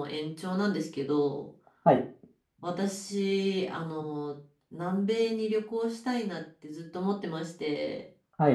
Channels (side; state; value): both; identical; correlation 1.00